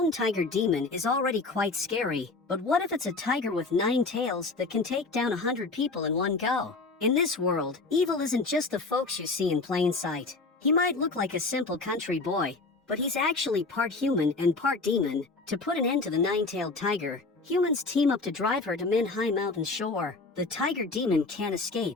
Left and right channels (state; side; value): quieter; right; 3.7 dB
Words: tiger demon is already quite scary, but what if it's a tiger with 9 tails that can take down 100 people in one go? In this world, evil isn't just the folks you see in plain sight. He might look like a simple country boy, but he's actually part human and part demon. To put an end to the 9-tailed tiger, humans team up to drive her to Min-Hai Mountain shore. The tiger demon can't